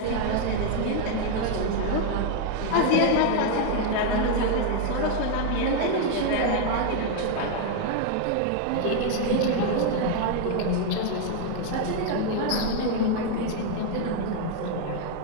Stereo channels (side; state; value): both; different; correlation 0.00